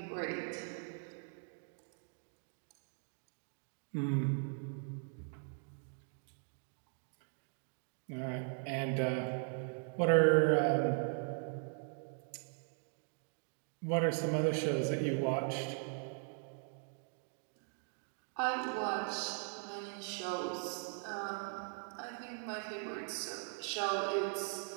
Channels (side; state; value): left; silent; 51 dB below the other